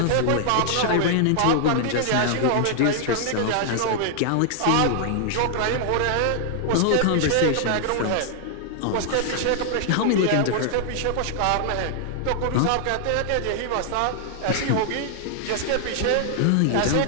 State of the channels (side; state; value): both; different; correlation 0.00